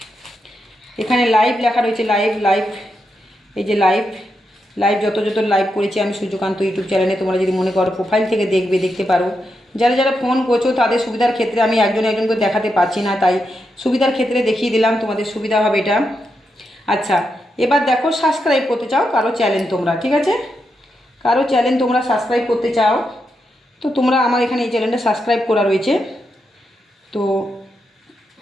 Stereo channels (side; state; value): both; normal; correlation 0.84